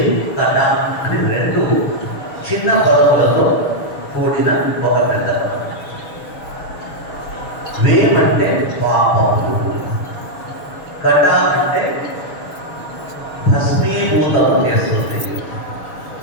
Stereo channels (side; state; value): right; late; 6.7 ms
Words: అని రెండు చిన్న పర్వతాలతో కూడిన ఒక పెద్ద. వేమంటే పాపము, కట అంటే భస్మీభూతం చేస్తుంది.